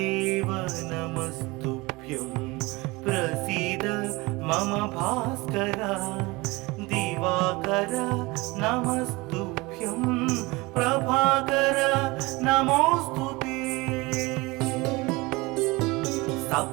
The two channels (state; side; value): quieter; left; 23.2 dB